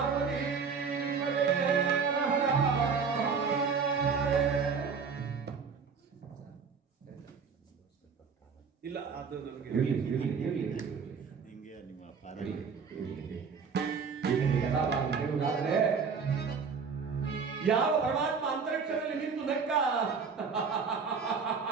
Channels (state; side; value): quieter; left; 5.7 dB